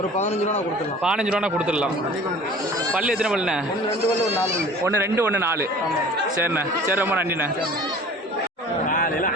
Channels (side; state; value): both; normal; correlation 0.45